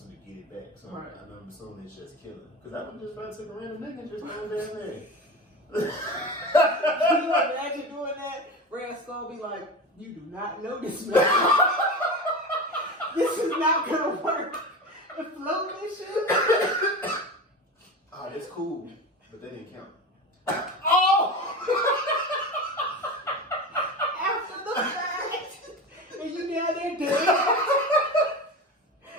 to get it back. So right. I'm assuming it's just killing. Because I would just try to take a random nigga and just go down there. Can you imagine doing that? Red Skull be like, you do not know this man. This is not gonna work. The floating and shit. Ah, that's cool, but that didn't count. Oh! After the fact, and you down there dead.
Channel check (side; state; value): both; normal; correlation 0.27